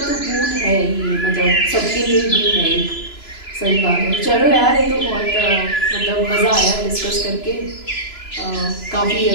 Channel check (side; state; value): right; late; 2.9 ms